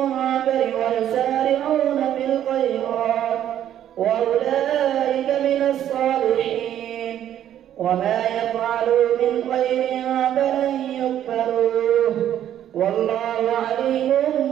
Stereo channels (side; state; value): left; quieter; 11.0 dB